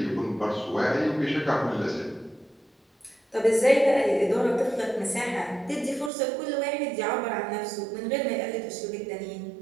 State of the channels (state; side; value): drops out; left; at 6.1 s